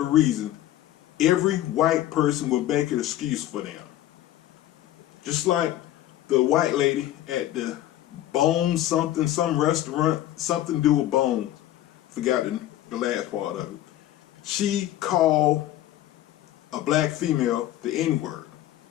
reason, every white person will make an excuse for them. Just like the white lady at the Bones something, some restaurant, something to do with bones. Forgot the last part of it. She called a black female the N-word.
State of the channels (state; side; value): quieter; right; 13.6 dB